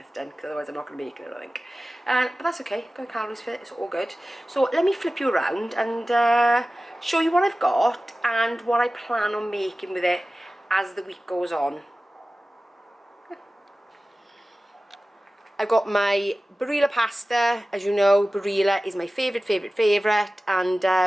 done, because otherwise I'm not going to make it, I think. But that's okay, got calories for it, it's all good. So let me flip you around and show you what I've got and what I plan on making with it as the week goes on. I've got my Barilla Pasta. As you know, Barilla is my favourite, and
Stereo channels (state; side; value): normal; both; correlation 0.96